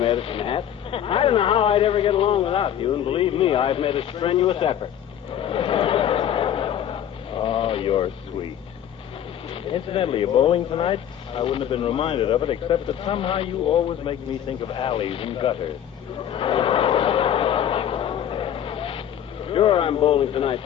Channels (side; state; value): right; quieter; 10.1 dB